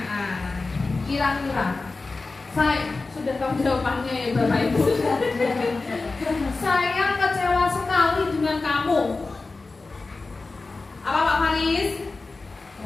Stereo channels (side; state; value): right; quieter; 3.7 dB